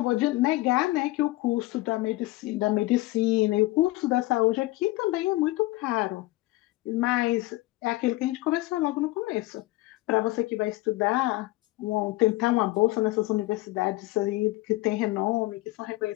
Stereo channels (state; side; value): quieter; right; 19.3 dB